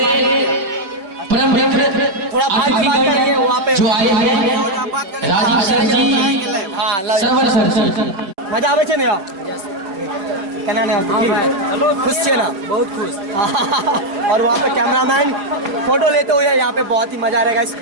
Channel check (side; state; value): left; late; 5.1 ms